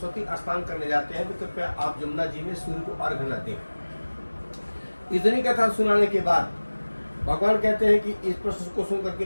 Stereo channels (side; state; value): both; inverted; correlation -1.00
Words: स्नान करने जाते हैं तो कृपया आप जमुना जी में सूर्य को अर्घ न दें। इतनी कथा सुनाने के बाद भगवान कहते हैं कि इस प्रश्न को सुन करके